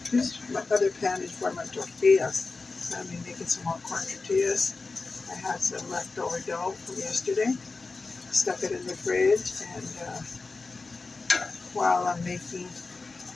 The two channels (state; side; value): quieter; right; 3.9 dB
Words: My other pan is for my tortillas. So I'm making some more corn tortillas. I had some leftover dough from yesterday. Stuck it in the fridge, and while I'm